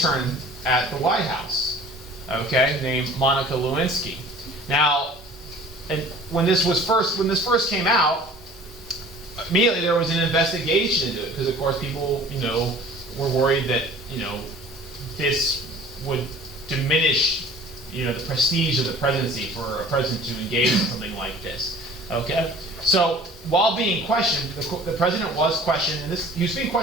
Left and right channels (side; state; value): both; normal; correlation 0.47